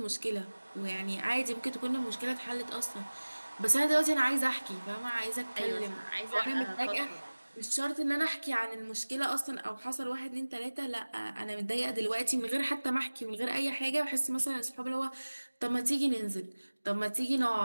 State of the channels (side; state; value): both; inverted; correlation -1.00